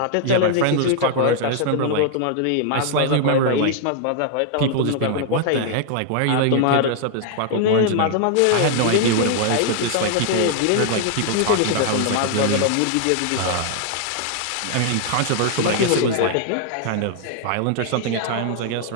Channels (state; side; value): different; both; correlation -0.01